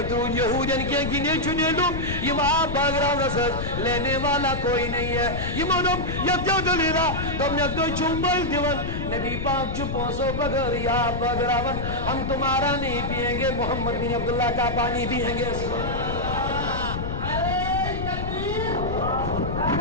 درود یہودین کے گنے چنے لوگ یم آب باغراو رسد لینے والا کوئی نہیں ہے یمو دو یت دلیرا دومنگ دو چومبل دیون نبی پاک چپوں سو بغیر یا بغراون ہم تمہارا نہیں پیئیں گے محمد بن عبداللہ کا پانی پیئیں گے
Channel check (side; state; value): left; noise; rumble, 4 dB below the sound